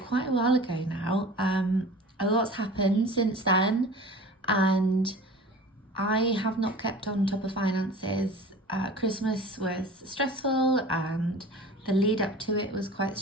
quite a while ago now. A lot's happened since then and I have not kept on top of finances. Christmas was stressful and the lead up to it was quite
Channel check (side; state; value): both; normal; correlation 0.40